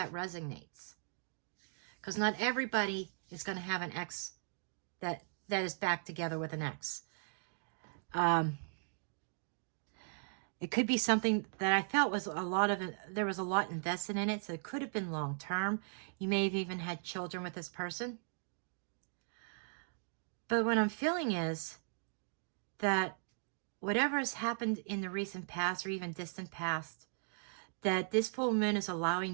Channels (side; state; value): left; silent; digital silence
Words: resonates. Because not everybody is going to have an ex that is back together with an ex. It could be something that I felt was there was a lot invested in it, so it could have been long term. You may have even had children with this person. But what I'm feeling is that whatever has happened in the recent past or even distant past, that this full moon is